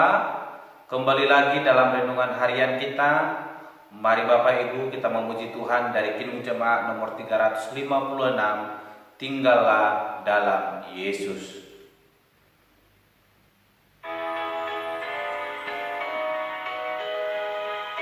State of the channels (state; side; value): identical; both; correlation 1.00